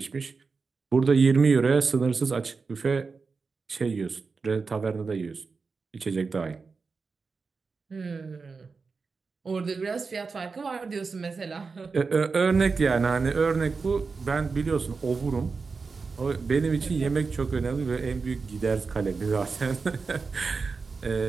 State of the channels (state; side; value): quieter; left; 4.6 dB